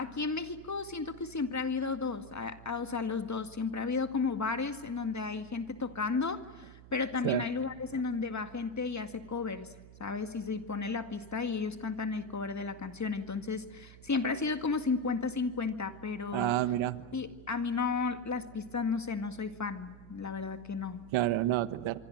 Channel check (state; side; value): noise; right; hum, 18 dB below the sound